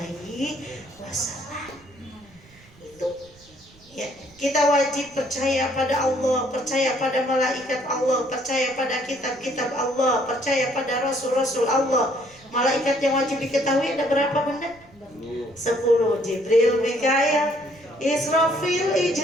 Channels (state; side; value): noise; right; rumble, 27 dB below the sound